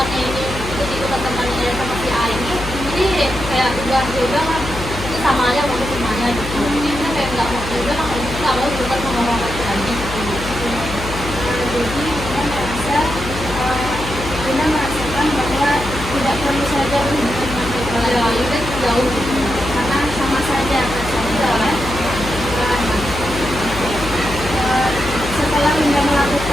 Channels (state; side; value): noise; left; hum, 9 dB below the sound